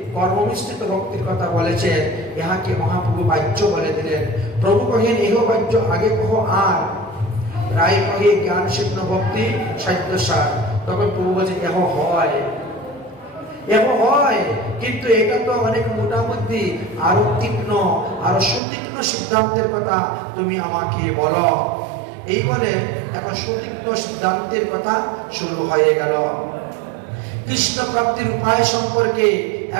কর্মমিশ্রিত ভক্তির কথা বলেছেন, ইহাকে মহাপ্রভু বাহ্য বলে দিলেন। প্রভু কহেন, এহ বাহ্য আগে কহ আর। রায় কহে জ্ঞান সিদ্ধ ভক্তি সাধ্যসার। তখন প্রভু বলছে, এহ হয়, এহ হয়, কিন্তু এটা তো অনেক মোটামুটি, আরো তীক্ষ্ণ, আরো সুতীক্ষ্ণ সিদ্ধান্তের কথা তুমি আমাকে বলো। এই বলে এখন সুতীক্ষ্ণ সিদ্ধান্তের কথা শুরু হয়ে গেল। কৃষ্ণ প্রাপ্তির উপায় সম্পর্কে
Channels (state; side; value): drops out; left; at 18.6 s